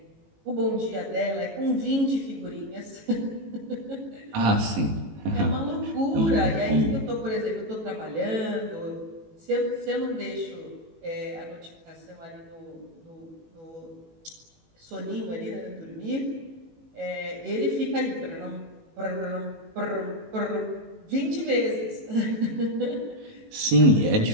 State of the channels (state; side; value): late; left; 18 ms